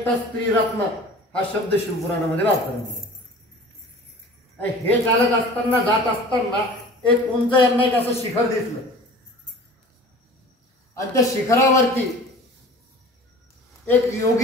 स्त्री रत्न हा शब्द शिवपुराणामध्ये वापरला. हे चालत असताना जात असताना एक उंच यांना एक असं शिखर दिसलं आणि त्या शिखरावरती एक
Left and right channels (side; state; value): both; normal; correlation 0.43